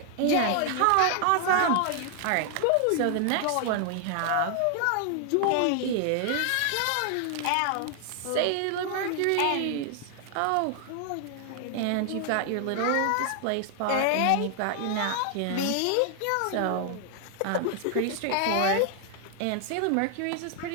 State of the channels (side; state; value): both; different; correlation 0.00